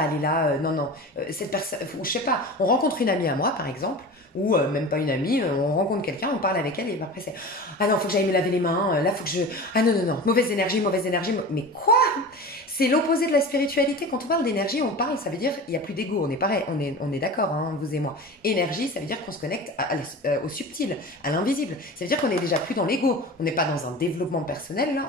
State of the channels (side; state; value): both; normal; correlation 0.33